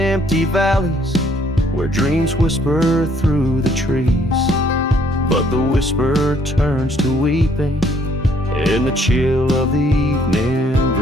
valleys where dreams whisper through the trees, but the whisper turns to weeping in the chill of the evening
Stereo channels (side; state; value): both; normal; correlation 0.65